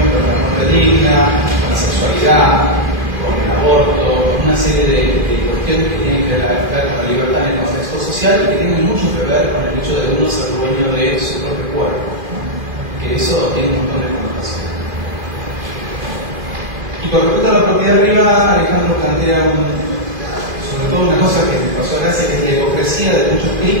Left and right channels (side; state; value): left; late; 2.5 ms